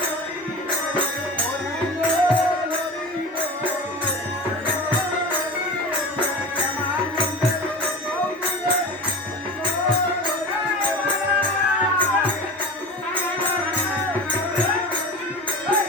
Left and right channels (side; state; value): both; normal; correlation 0.32